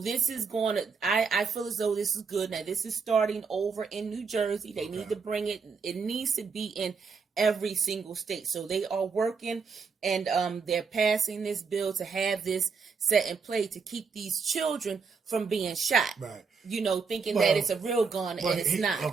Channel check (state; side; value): quieter; left; 5.3 dB